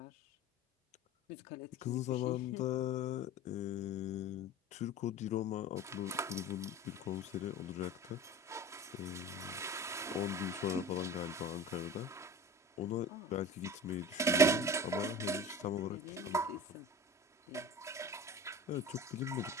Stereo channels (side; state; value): both; normal; correlation 0.37